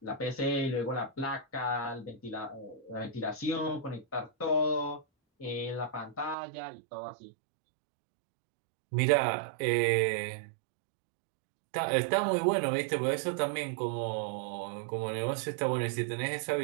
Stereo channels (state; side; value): drops out; left; at 6.4 s